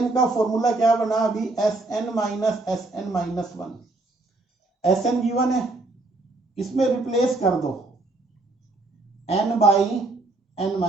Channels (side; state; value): left; quieter; 3.1 dB